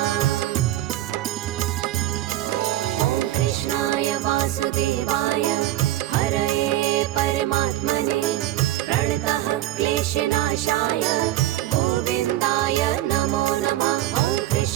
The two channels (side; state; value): left; quieter; 14.3 dB